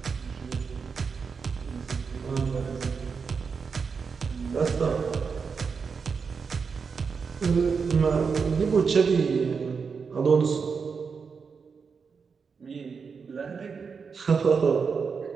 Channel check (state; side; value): quieter; left; 5.6 dB